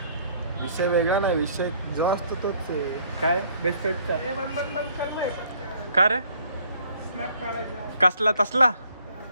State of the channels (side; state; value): both; inverted; correlation -0.61